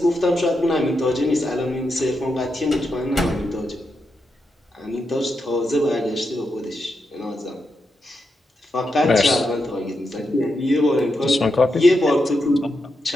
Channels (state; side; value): normal; both; correlation 0.85